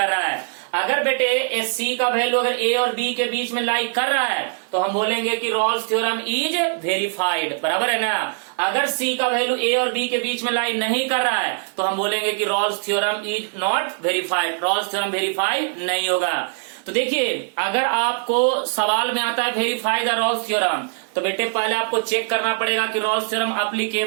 रहा है। अगर बेटे c का वैल्यू अगर a और b के बीच में लाई कर रहा है तो हम बोलेंगे कि रॉल्स थ्योरम इज वेरीफाइड, बराबर है ना। अगर c का वैल्यू a और b के बीच में लाई नहीं कर रहा है तो हम बोलेंगे कि Rolle's theorem is not verified, Rolle's theorem verify नहीं होगा। तो देखिए, अगर आपको सवाल में आता है वेरीफाई द रॉल्स थ्योरम तो बेटे पहले आपको चेक करना पड़ेगा कि रॉल्स थ्योरम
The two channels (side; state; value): left; silent; digital silence